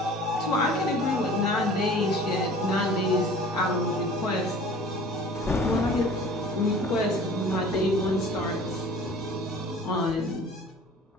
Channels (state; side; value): normal; both; correlation 0.45